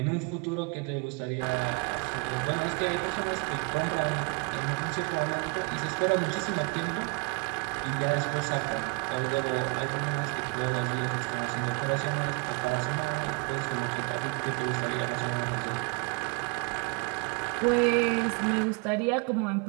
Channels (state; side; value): quieter; left; 32.7 dB